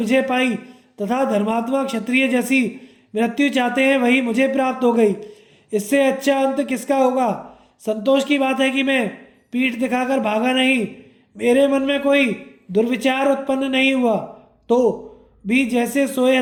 पाई तथा धर्मात्मा क्षत्रिय जैसी मृत्यु चाहते हैं वही मुझे प्राप्त हो गई। इससे अच्छा अंत किसका होगा। संतोष की बात है कि मैं पीठ दिखाकर भागा नहीं, मेरे मन में कोई दुर्विचार उत्पन्न नहीं हुआ, तो भी जैसे सोए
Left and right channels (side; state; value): both; identical; correlation 1.00